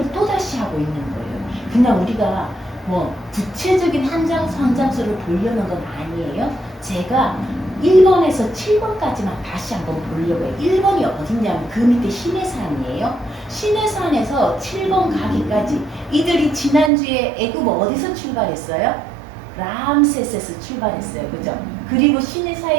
또다시 하고 있는 거예요. 그냥 우리가 뭐 구체적인 한 장, 한 장수를 보려는 건 아니에요. 제가 1번에서 7번까지만 다시 한번 보려고 해요. 1번이 어딨냐면 그 밑에 시내산이에요. 시내산에서 7번 가기까지 이들이 지난주에 애굽 어디서 출발했어요? 람세스에서 출발했어요. 그죠? 그리고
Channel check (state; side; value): drops out; left; at 16.9 s